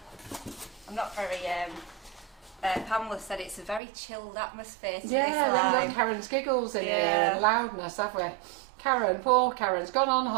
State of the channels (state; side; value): drops out; left; at 3.8 s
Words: I'm not very, Pamela said it's a very chilled atmosphere to Yeah, this then we've live. got Karen's giggles in here Yeah. and loudness, have we? Karen, poor Karen's gone on